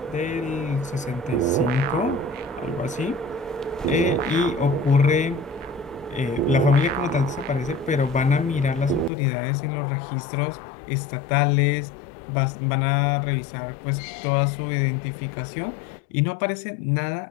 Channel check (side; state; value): right; drops out; at 9.1 s